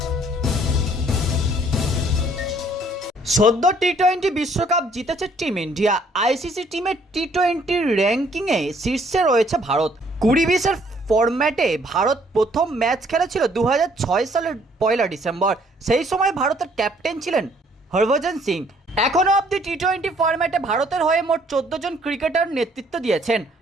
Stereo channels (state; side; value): normal; both; correlation 0.63